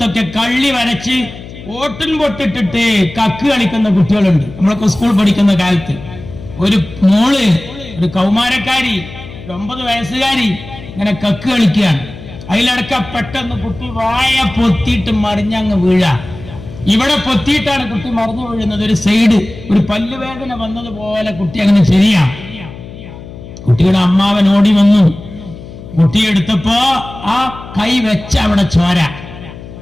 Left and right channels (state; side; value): noise; left; hum, 15 dB below the sound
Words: കള്ളി വരച്ച് ഓട്ടിൻ പൊട്ടിട്ടിട്ട് കക്ക് കളിക്കുന്ന കുട്ടികളുണ്ട്. നമ്മളൊക്കെ സ്കൂൾ പഠിക്കുന്ന കാലത്ത് ഒരു മോള്, ഒരു കൗമാരക്കാരി, ഒരു 9 വയസ്സുകാരി ഇങ്ങനെ കക്ക് കളിക്കുകയാണ്. അതിലടക്ക പെട്ടെന്ന് കുട്ടി വായ പൊത്തിയിട്ട് മറിഞ്ഞങ്ങ് വീഴാ. ഇവിടെ പൊത്തിയിട്ടാണ് കുട്ടി മറിഞ്ഞു വീഴുന്നത്. ഒരു സൈഡ് ഒരു പല്ലുവേദന വന്നതുപോലെ കുട്ടി അങ്ങനെ ശരിയാ. കുട്ടിയുടെ അമ്മാവൻ ഓടി വന്നു. കുട്ടിയെടുത്തപ്പോ ആ കൈ വെച്ച അവിടെ ചോര.